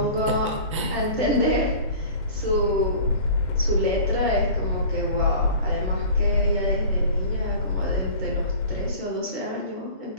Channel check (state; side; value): inverted; both; correlation -0.40